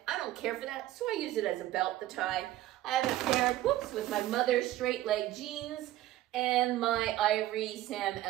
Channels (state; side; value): quieter; left; 14.8 dB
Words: I don't care for that, so I use it as a belt, the tie. I have a pair, whoops, with my mother's straight leg jeans, and my ivory Sam